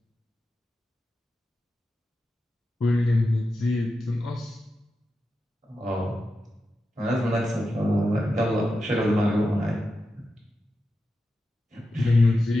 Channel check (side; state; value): both; normal; correlation 0.90